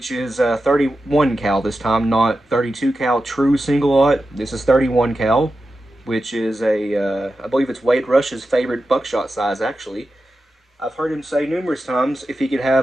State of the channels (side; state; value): both; normal; correlation 0.91